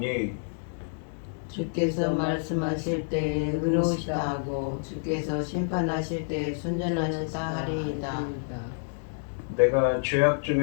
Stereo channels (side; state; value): right; silent; digital silence